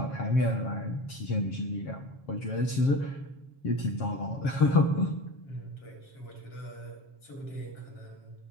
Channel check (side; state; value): right; late; 7.3 ms